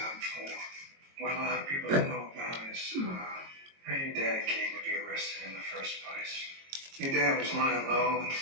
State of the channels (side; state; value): left; late; 22 ms